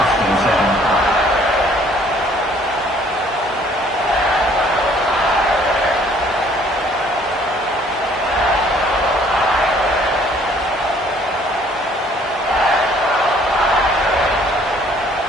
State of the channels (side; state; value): both; normal; correlation 0.59